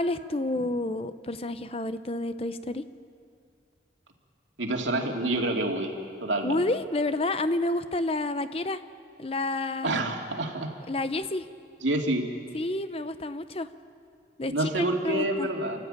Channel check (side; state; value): both; normal; correlation 0.34